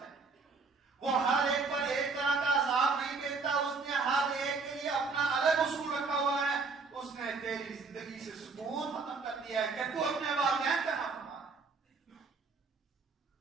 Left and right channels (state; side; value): quieter; left; 4.4 dB